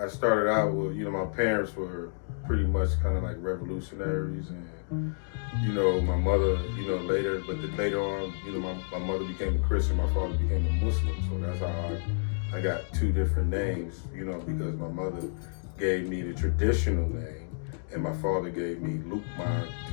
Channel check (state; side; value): silent; right; digital silence